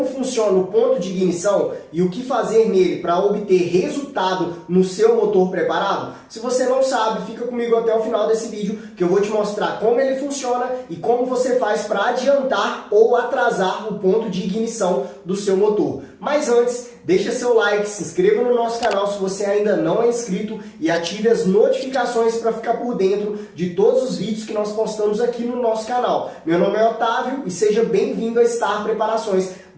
funciona o ponto de ignição e o que fazer nele para obter resultado no seu motor preparado? Se você não sabe, fica comigo até o final desse vídeo que eu vou te mostrar como ele funciona e como você faz para adiantar ou atrasar o ponto de ignição do seu motor. Mas antes, deixa seu like, se inscreva no nosso canal se você ainda não é inscrito e ative as notificações para ficar por dentro de todos os vídeos que nós postamos aqui no nosso canal. Meu nome é Otávio e seja bem-vindo a Star Preparações.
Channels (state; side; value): identical; both; correlation 1.00